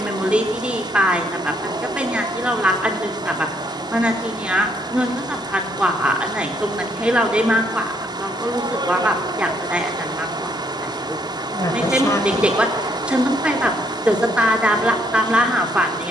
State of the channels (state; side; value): normal; both; correlation 0.70